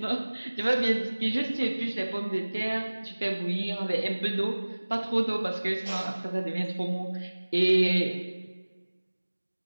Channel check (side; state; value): both; inverted; correlation -1.00